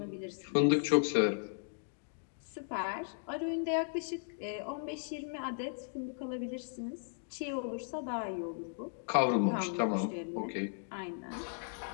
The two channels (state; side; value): silent; right; digital silence